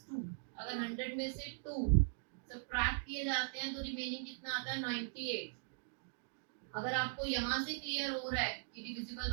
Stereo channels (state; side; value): silent; left; digital silence